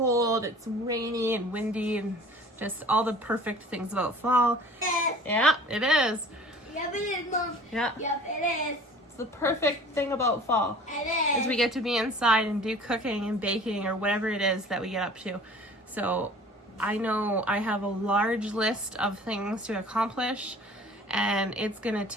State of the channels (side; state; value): both; normal; correlation 0.46